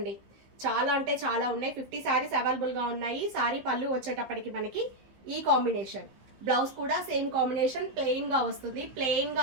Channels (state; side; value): late; left; 15 ms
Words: చాలా అంటే చాలా ఉన్నాయి. 50 శారీస్ అవైలబుల్ గా ఉన్నాయి. శారీ పళ్ళు వచ్చేటప్పటికి మనకి ఈ కాంబినేషన్, బ్లౌజ్ కూడా సేమ్ కాంబినేషన్ ప్లెయిన్ గా వస్తుంది. ప్లెయిన్ గా